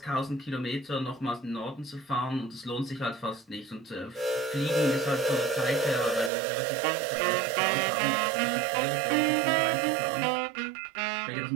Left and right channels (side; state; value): left; drops out; at 6.3 s